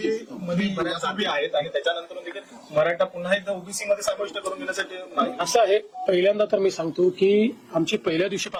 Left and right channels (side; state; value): both; identical; correlation 1.00